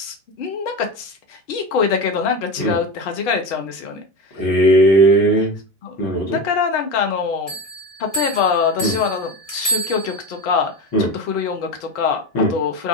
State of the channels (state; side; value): late; right; 1.0 ms